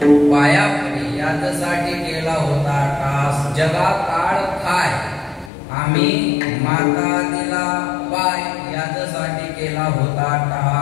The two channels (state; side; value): drops out; right; at 5.5 s